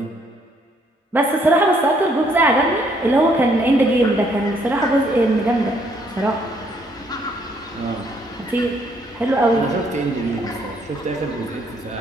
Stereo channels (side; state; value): both; normal; correlation 0.68